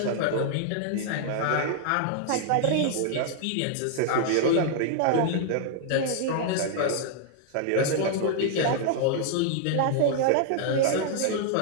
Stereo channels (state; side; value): different; both; correlation 0.00